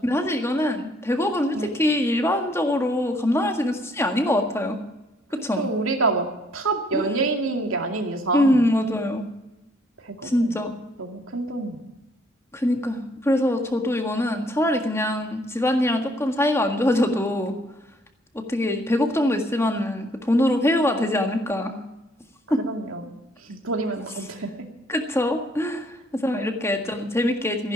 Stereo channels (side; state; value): both; normal; correlation 0.64